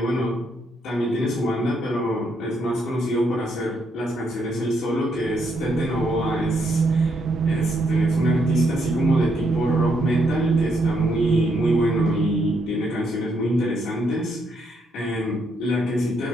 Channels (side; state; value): both; normal; correlation 0.75